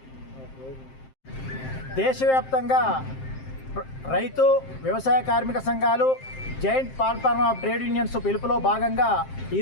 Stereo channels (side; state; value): right; late; 7.6 ms